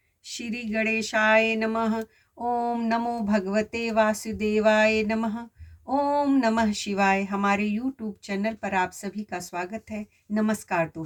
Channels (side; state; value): both; identical; correlation 1.00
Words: श्री गणेशाय नमः। ओम नमो भगवते वासुदेवाय नमः। ओम नमः शिवाय। हमारे यूट्यूब चैनल पर आप सभी का स्वागत है। नमस्कार